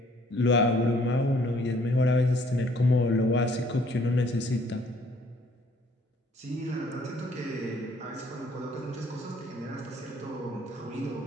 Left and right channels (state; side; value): normal; both; correlation 0.61